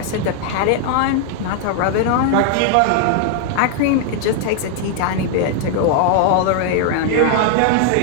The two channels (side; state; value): both; different; correlation 0.00